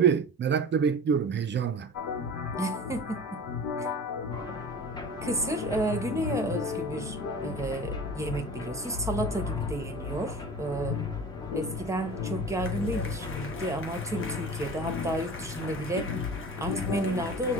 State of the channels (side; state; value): both; normal; correlation 0.36